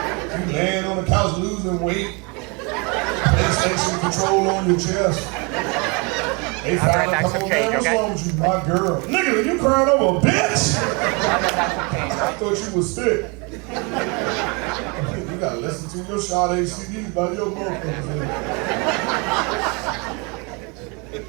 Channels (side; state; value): left; quieter; 30.7 dB